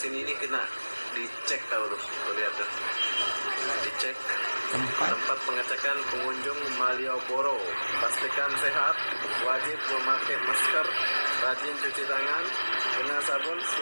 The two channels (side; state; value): both; inverted; correlation -1.00